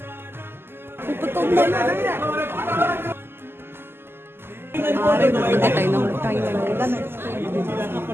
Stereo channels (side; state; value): left; late; 0.11 ms